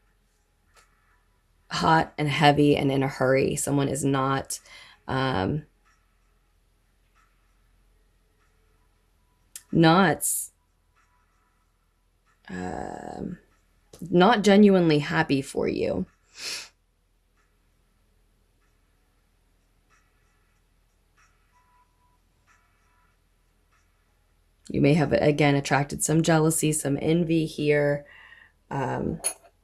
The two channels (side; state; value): both; identical; correlation 1.00